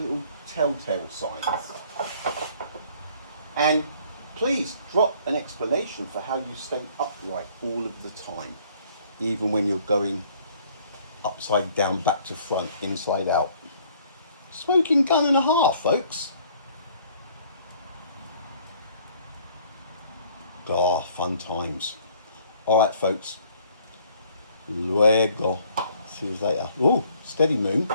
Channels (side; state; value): both; inverted; correlation -0.59